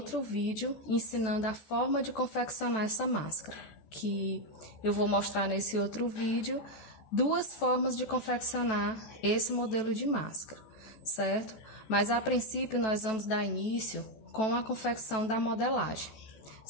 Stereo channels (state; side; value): late; right; 14 ms